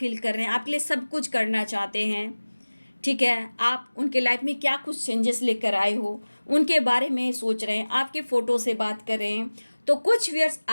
कर रहे हैं, आपके लिए सब कुछ करना चाहते हैं, ठीक है। आप उनके लाइफ में क्या कुछ चेंजेस लेकर आए हो, उनके बारे में सोच रहे हैं, आपके फ़ोटो से बात कर रहे हैं। तो कुछ व्यूअर्स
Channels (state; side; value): inverted; both; correlation -1.00